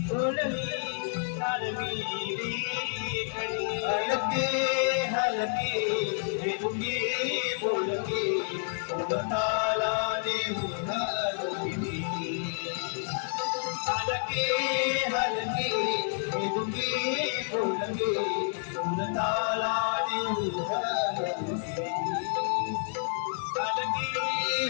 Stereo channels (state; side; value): silent; right; 58 dB below the other